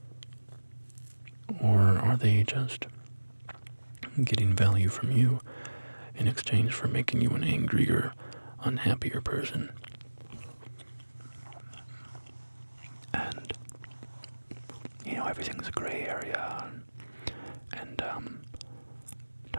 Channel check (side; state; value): both; inverted; correlation -1.00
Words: Or are they just getting value from you in exchange for making you an angrier, unhappier person? And, everything's a gray area, and it